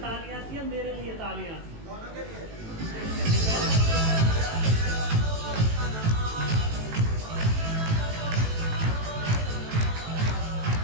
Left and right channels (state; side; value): late; left; 18 ms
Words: थी या मेरे लिए तालियां थी?